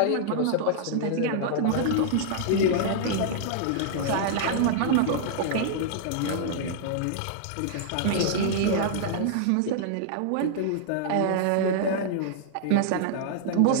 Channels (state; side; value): different; both; correlation -0.01